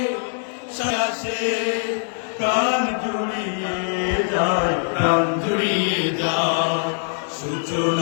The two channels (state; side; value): silent; right; 63 dB below the other